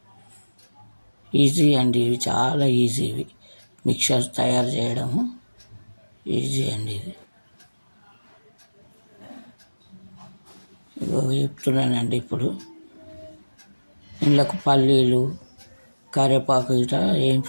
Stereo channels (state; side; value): inverted; both; correlation -1.00